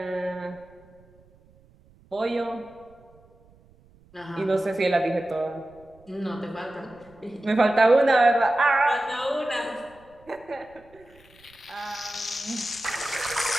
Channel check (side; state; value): right; noise; rumble, 28 dB below the sound